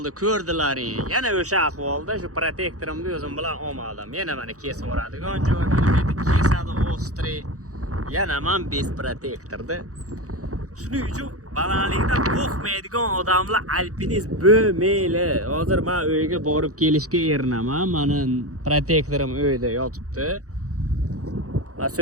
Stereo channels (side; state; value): left; late; 0.66 ms